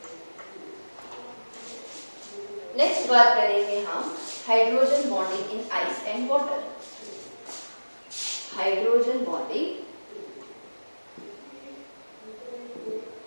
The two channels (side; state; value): both; inverted; correlation -1.00